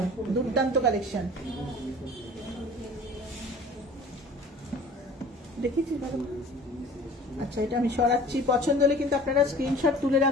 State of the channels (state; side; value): normal; both; correlation 0.45